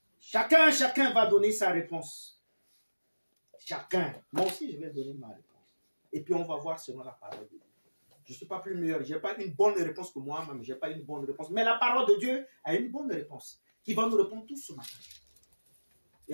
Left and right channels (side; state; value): both; inverted; correlation -1.00